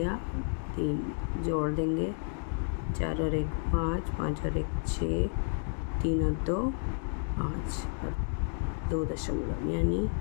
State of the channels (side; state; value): right; silent; 57 dB below the other